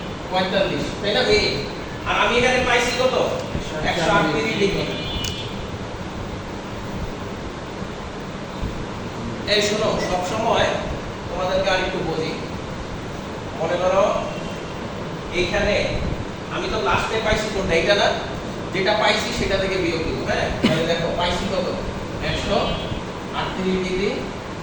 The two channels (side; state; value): both; identical; correlation 1.00